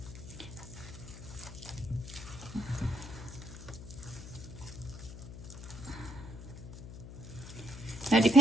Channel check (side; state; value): left; noise; hum, 11 dB below the sound